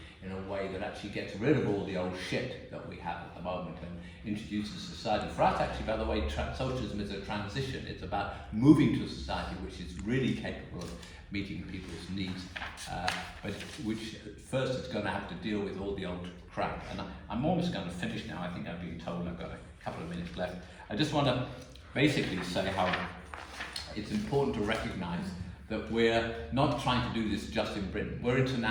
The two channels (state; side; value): identical; both; correlation 1.00